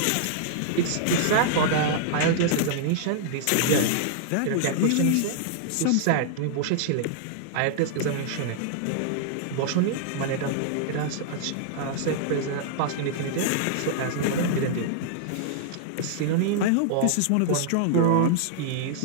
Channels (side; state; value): both; different; correlation -0.01